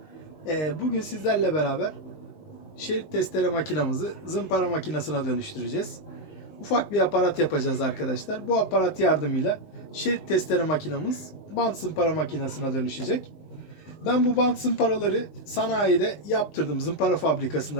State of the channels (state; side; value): late; right; 19 ms